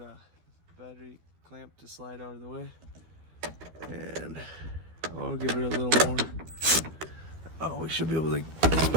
battery clamp to slide out of the way. And I'll give it a little more. Oh, we should be able to, this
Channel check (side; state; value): left; late; 12 ms